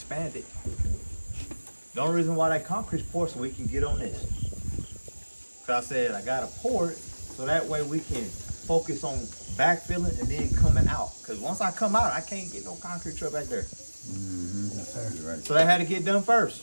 it. The only reason why that concrete's poured so we can get on this. Cause I said I gotta pour it so that way we can focus on backfilling and then coming out. Cause once I come out, I can't get no concrete truck back there. Yes, sir. Right. So that had to get done first.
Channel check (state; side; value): inverted; both; correlation -1.00